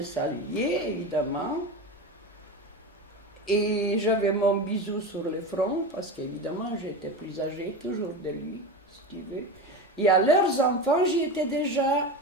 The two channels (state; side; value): normal; both; correlation 0.24